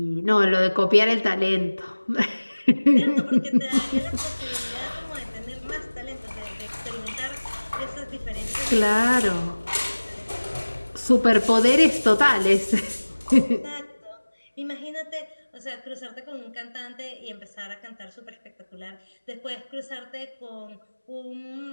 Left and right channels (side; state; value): both; inverted; correlation -1.00